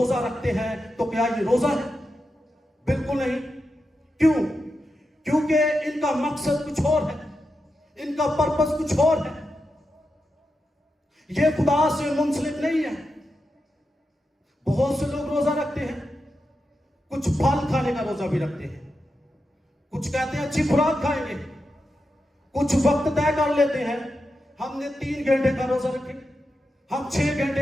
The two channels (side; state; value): both; normal; correlation 0.88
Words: رکھتے ہیں، تو کیا یہ روزہ ہے؟ بالکل نہیں۔ کیوں؟ کیونکہ ان کا مقصد کچھ اور ہے، ان کا پرپس کچھ اور ہے، یہ خدا سے منسلک نہیں ہے۔ بہت سے لوگ روزہ رکھتے ہیں، کچھ پھل کھانے کا روزہ بھی رکھتے ہیں، کچھ کہتے ہیں اچھی خوراک کھائیں گے، کچھ وقت طے کر لیتے ہیں، ہم نے 3 گھنٹے کا روزہ رکھیں گے، ہم 6